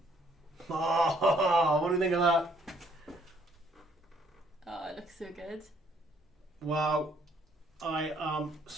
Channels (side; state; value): both; normal; correlation 0.65